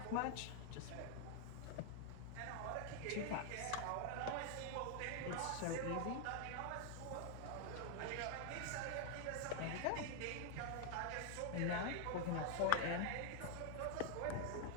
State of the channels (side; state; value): both; different; correlation 0.00